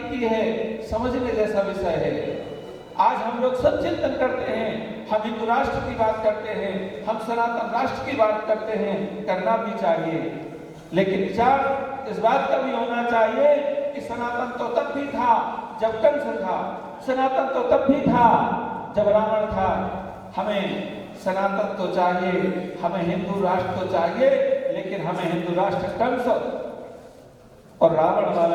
की है, समझने जैसा विषय है। आज हम लोग सब चिंतन करते हैं, हम हिंदू राष्ट्र की बात करते हैं, हम सनातन राष्ट्र की बात करते हैं, करना भी चाहिए, लेकिन विचार इस बात का भी होना चाहिए कि सनातन तो तब भी था जब कंस था, सनातन तो तब भी था जब रावण था। हमें सनातन तो चाहिए, हमें हिंदू राष्ट्र तो चाहिए, लेकिन हमें हिंदू राष्ट्र कंस और रावण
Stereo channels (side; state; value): both; identical; correlation 1.00